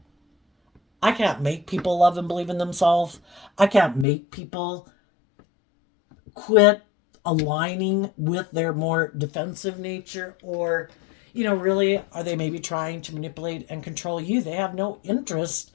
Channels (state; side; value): drops out; right; at 4.0 s